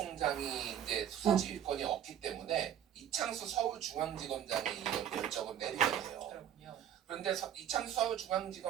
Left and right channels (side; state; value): left; quieter; 9.9 dB